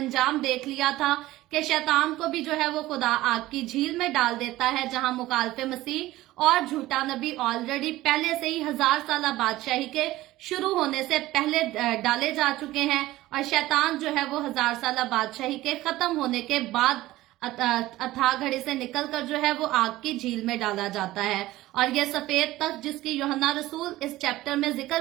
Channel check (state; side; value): quieter; left; 16.8 dB